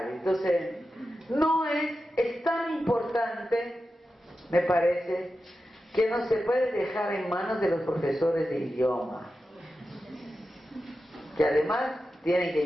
Entonces, es tan importante, me parece, que no se puede dejar en manos de los profesores de idioma, que además tienen que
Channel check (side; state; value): both; normal; correlation 0.91